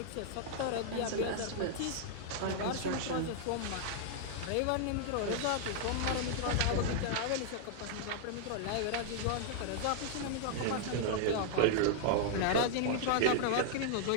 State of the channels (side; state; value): both; different; correlation -0.01